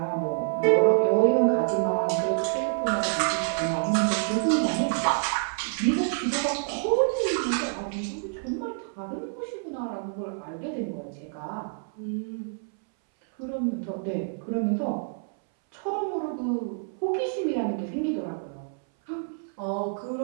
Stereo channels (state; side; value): silent; left; 60 dB below the other